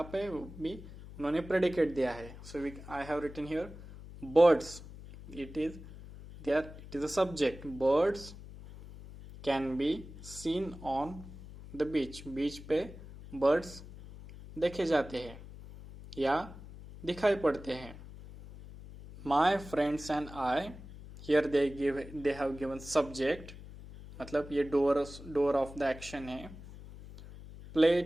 पे भी उन्होंने प्रेडिकेट दिया है. So I have written here birds. It is a subject. Birds can be seen on the beach. Beach पे birds देखे जाते हैं या दिखाई पड़ते हैं. My friends and I, here they have given subject, मतलब ये door of the action है.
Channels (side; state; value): left; noise; hum, 15 dB below the sound